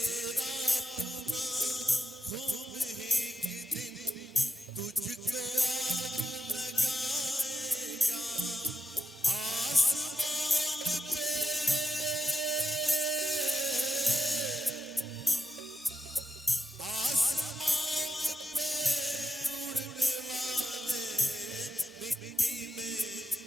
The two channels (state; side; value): normal; both; correlation 0.85